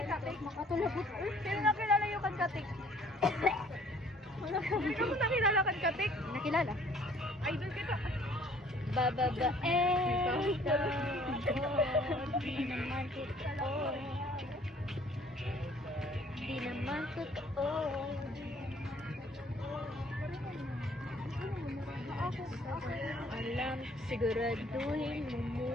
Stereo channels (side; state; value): both; normal; correlation 0.57